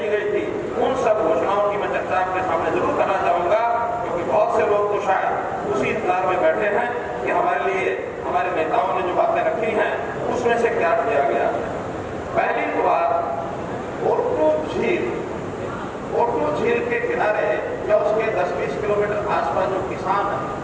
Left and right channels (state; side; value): identical; both; correlation 1.00